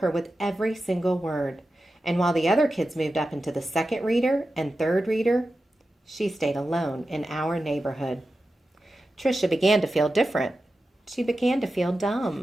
with every single word. And while the other kids moved up into the second reader and third reader, she stayed alone in Our Neighborhood. Tricia began to feel different. She began to feel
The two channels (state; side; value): normal; both; correlation 0.92